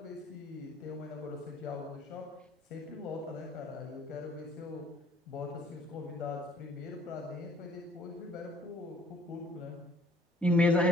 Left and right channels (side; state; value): both; normal; correlation 0.59